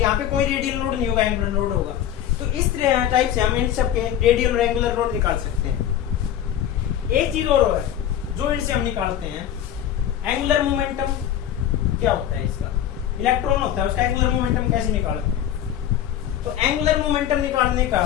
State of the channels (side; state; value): right; quieter; 10.7 dB